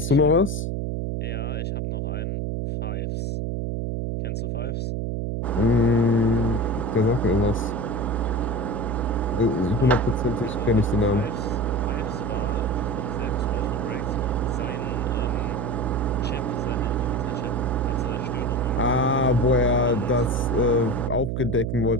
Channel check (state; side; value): noise; right; hum, 1 dB below the sound